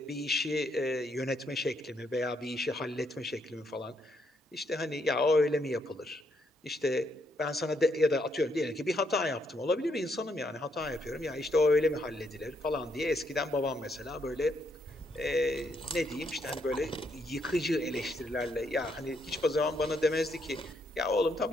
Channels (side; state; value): both; normal; correlation 0.75